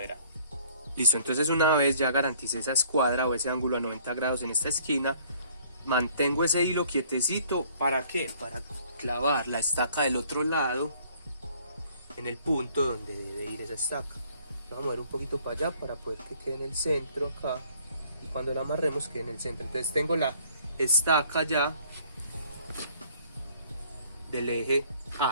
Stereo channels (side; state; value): both; inverted; correlation -0.58